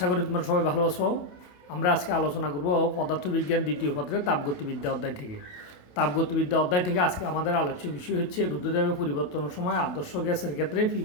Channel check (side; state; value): right; late; 28 ms